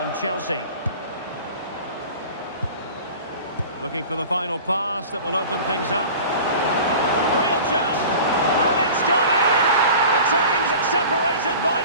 Chelsea. Looking for the final pass that will open things up. Real chance. And it's gone in. The team's separated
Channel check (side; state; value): both; inverted; correlation -0.39